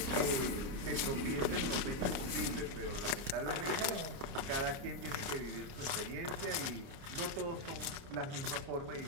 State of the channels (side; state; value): left; late; 29 ms